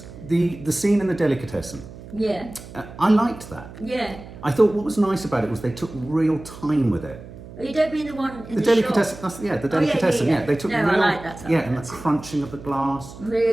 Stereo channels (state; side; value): noise; right; hum, 16 dB below the sound